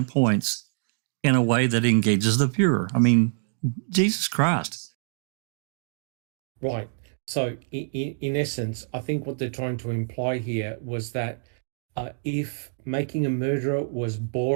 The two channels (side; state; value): left; silent; digital silence